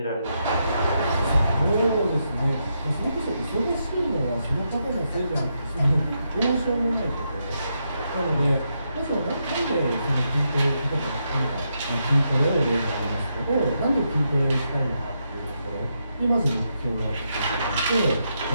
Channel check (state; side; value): inverted; both; correlation -0.82